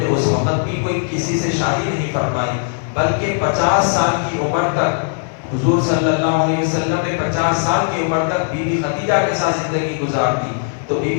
اس وقت بھی کوئی کسی سے شادی نہیں فرمائی، بلکہ 50 سال کی عمر تک حضور صلی اللہ علیہ وسلم نے 50 سال کی عمر تک بی بی خدیجہ کے ساتھ زندگی گزار دی. تو بی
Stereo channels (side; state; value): right; silent; digital silence